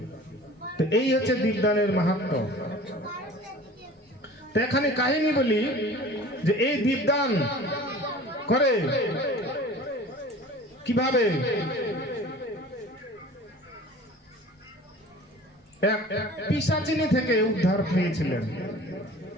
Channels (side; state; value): both; normal; correlation 0.43